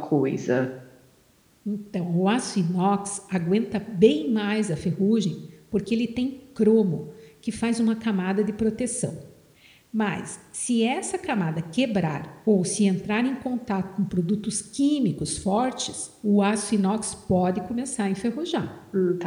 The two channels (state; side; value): identical; both; correlation 1.00